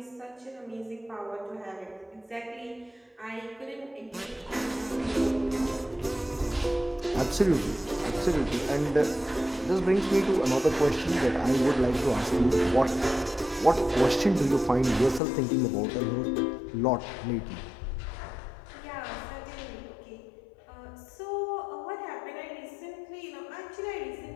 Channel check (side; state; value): right; drops out; at 15.2 s